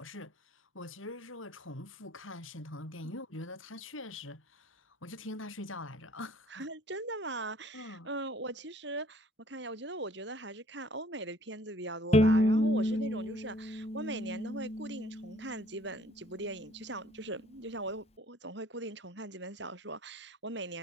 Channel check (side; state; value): both; normal; correlation 0.58